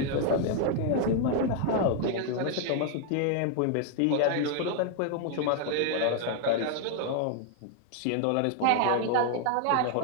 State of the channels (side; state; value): both; different; correlation 0.00